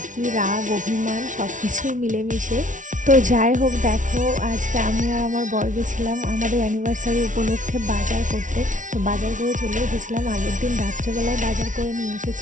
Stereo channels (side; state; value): left; late; 0.37 ms